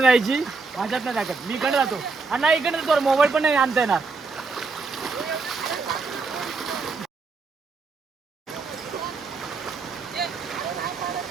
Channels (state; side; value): quieter; left; 4.3 dB